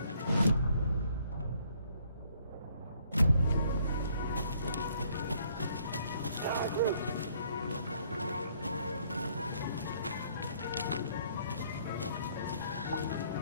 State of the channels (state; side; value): inverted; both; correlation -0.65